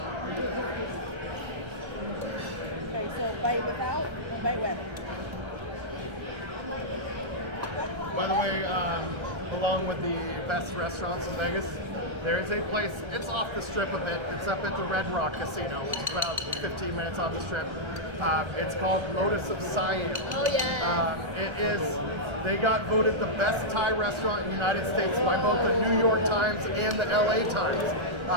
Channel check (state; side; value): late; left; 1.3 ms